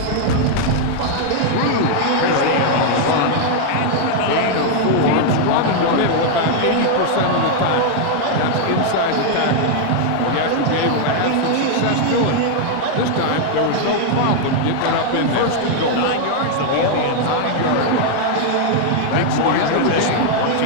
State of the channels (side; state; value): both; different; correlation 0.00